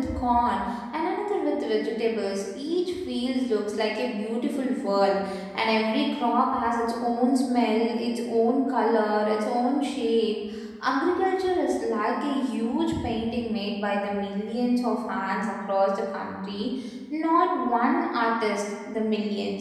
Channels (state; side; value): identical; both; correlation 1.00